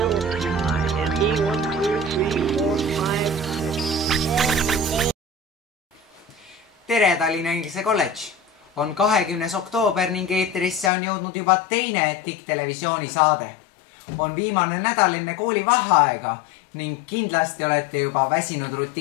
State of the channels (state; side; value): drops out; right; at 10.9 s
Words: Tere Tallinna Inglise Kolledž! On 20. oktoober ning eetrisse on jõudnud juba teine TIK-televisiooni saade. On viimane nädal enne kooli vaheaega ning kindlasti olete juba väsinud